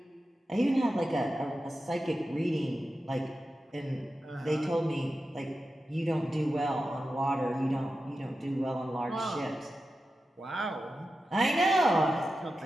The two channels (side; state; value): both; normal; correlation 0.92